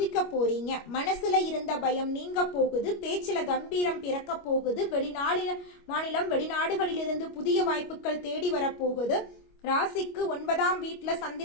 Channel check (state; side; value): late; right; 25 ms